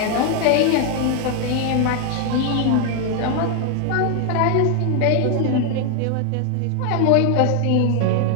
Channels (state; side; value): different; both; correlation 0.01